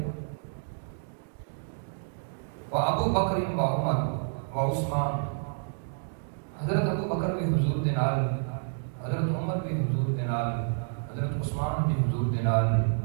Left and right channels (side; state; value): left; silent; digital silence